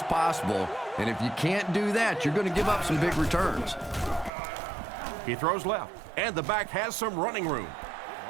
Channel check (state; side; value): drops out; left; at 4.3 s